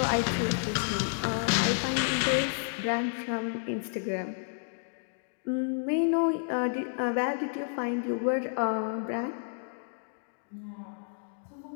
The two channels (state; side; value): silent; right; digital silence